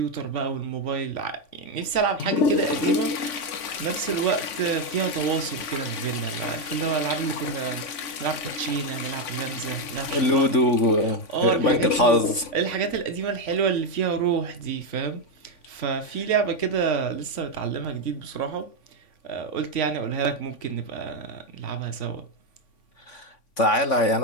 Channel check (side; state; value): right; late; 3.5 ms